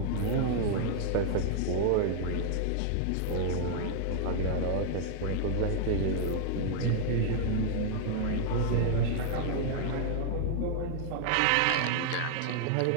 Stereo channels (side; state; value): both; different; correlation -0.01